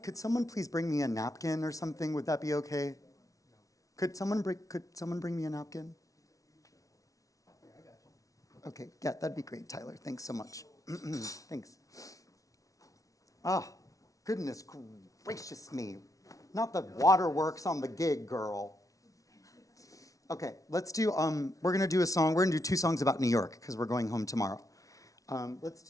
Could someone please bring me a napkin or something? Would that be okay? Could someone bring me a napkin? Okay, yeah, that'd be great, Tyler. Thanks so much. Thanks. Ah, goodness gracious me. Not the waterworks on the gig, girl. Okay, let's do, we're gonna do a song, we're gonna do 2 songs about New York, because we're going home tomorrow. Let's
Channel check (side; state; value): right; late; 0.17 ms